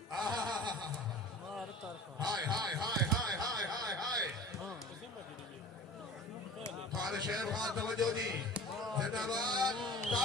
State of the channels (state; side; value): normal; both; correlation 0.41